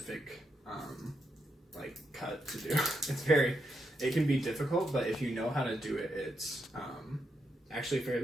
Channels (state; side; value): normal; both; correlation 0.82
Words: cut to do. It can be difficult, but if you know how to do it, it's actually